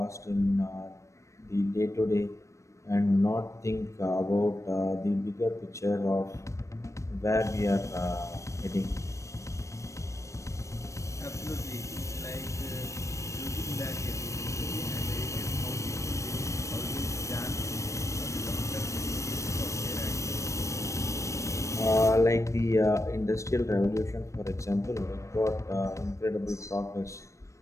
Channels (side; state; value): right; late; 0.15 ms